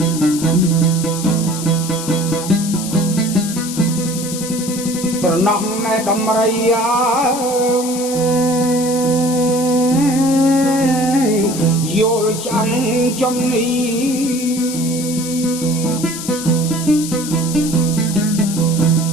ស្រណោះណែដំរីយល់ចាំចំនេះ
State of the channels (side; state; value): left; noise; hiss, 8 dB below the sound